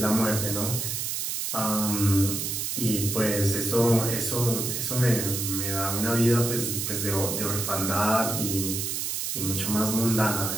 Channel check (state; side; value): noise; right; hiss, 2 dB below the sound